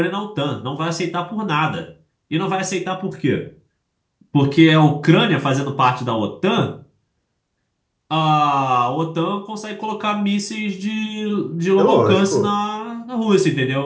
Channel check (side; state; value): both; identical; correlation 1.00